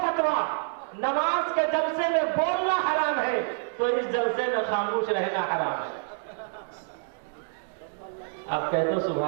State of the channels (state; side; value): silent; left; digital silence